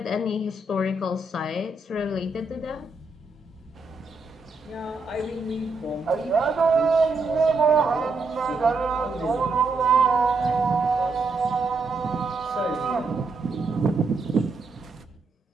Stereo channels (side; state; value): left; quieter; 3.6 dB